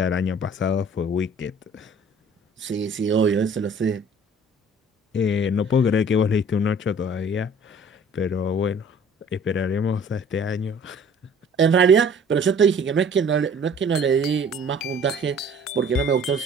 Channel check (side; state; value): both; normal; correlation 0.51